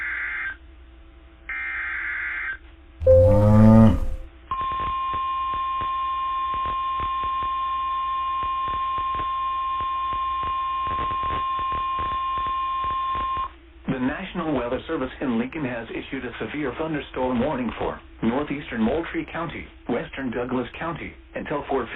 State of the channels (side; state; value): both; identical; correlation 1.00